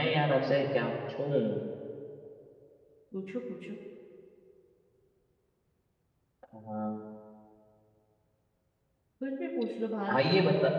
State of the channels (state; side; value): identical; both; correlation 1.00